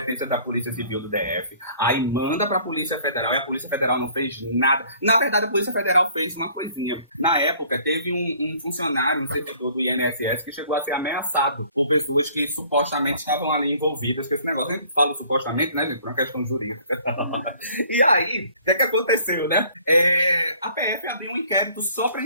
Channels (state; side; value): inverted; both; correlation -0.56